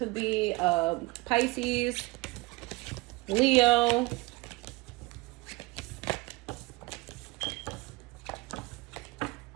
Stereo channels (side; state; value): left; quieter; 22.6 dB